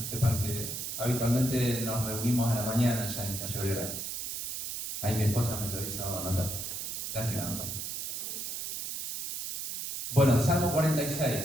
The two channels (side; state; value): right; noise; hiss, 5 dB below the sound